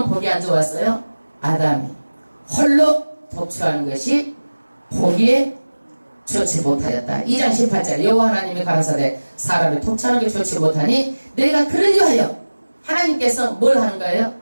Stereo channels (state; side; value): inverted; both; correlation -1.00